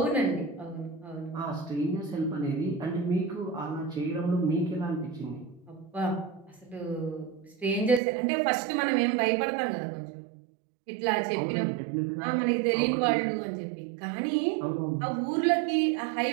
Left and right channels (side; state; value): left; drops out; at 8.0 s